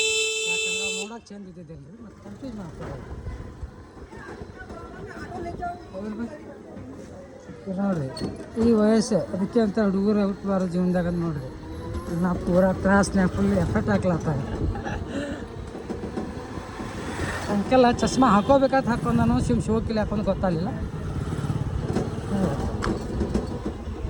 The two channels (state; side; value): identical; both; correlation 1.00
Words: ಯಾಕಂದ್ರೆ ನೋಡೋಕೆ ಚಂದ ಇದ್ದಿದ್ದಿಲ್ಲ ರೀ, ಮತ್ತು ಕನ್ಫ್ಯೂಸ್ ಮಾಡ್ತಾರೆ ನೋಡ್ರಿ. ಈ ವಯಸ್ಸು ಅದಕ್ಕೆ ಅಂತ ಹುಡುಗರು ಔಟ್ ಬಾರೋ ಜೀವನದಾಗ ನೋಡ್ರಿ. ನಾ ಪೂರಾ ತ್ರಾಸ್ನ್ಯಾಗ ಫುಲ್ ಎಫೆಕ್ಟ್ ಹಾಕ್ಲತ್ತಾಗ ಅಂಕೆಲ್ಲ ಚಸ್ಮಾ ಹಾಕೋಬೇಕಾದ್ರೆ ಹಾಕೊಂಡು ನಾನು ಶೋಕಿಲ್ಲ ಹಾಕೊಂಡು ಗೊತ್ತಾಗಲಿಲ್ಲ.